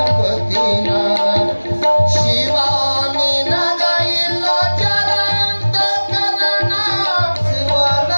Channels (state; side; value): inverted; both; correlation -1.00